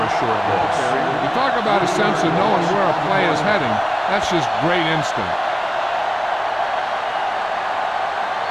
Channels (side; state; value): both; identical; correlation 1.00